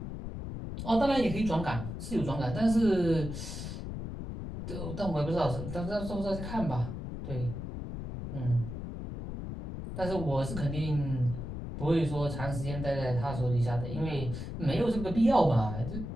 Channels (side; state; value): left; noise; rumble, 7 dB below the sound